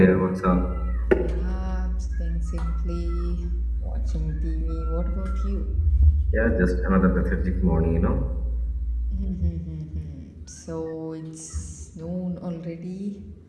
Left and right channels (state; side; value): identical; both; correlation 1.00